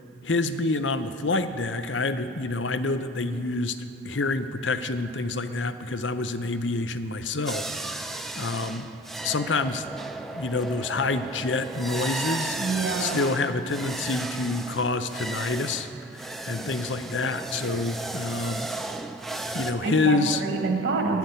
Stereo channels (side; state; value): both; normal; correlation 0.41